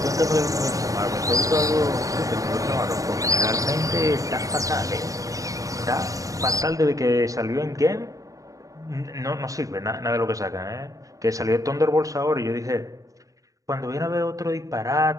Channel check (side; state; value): left; late; 0.16 ms